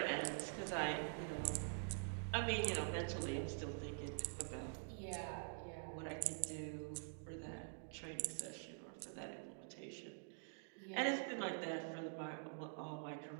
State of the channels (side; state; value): left; silent; digital silence